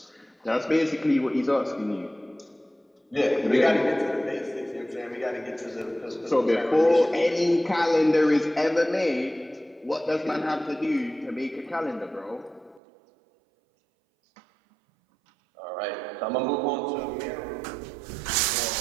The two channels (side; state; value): left; drops out; at 12.8 s